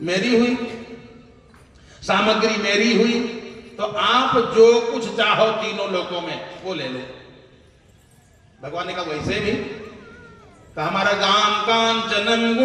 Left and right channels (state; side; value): identical; both; correlation 1.00